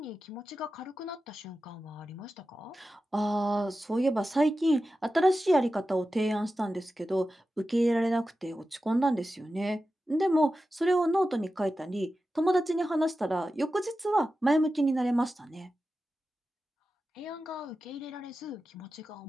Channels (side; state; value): both; normal; correlation 0.93